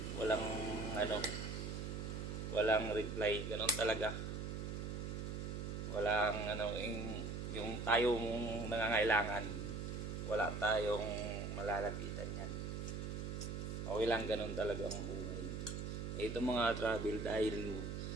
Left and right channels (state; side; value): noise; right; hum, 4 dB below the sound